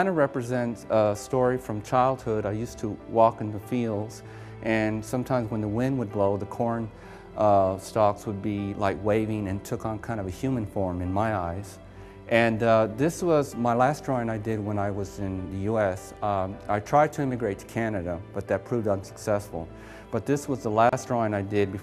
of represents a story from childhood. I used to walk in the fields, and sometimes when the wind would blow, the corn stalks would be like waving and took on kind of a human form in my eyes. And this was my last drawing I did when I was in the US. I tried to immigrate to Canada, but that proved unsuccessful. But this was the last drawing I did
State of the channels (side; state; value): both; identical; correlation 1.00